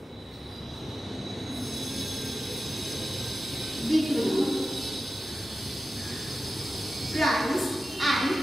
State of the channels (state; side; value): normal; both; correlation 0.93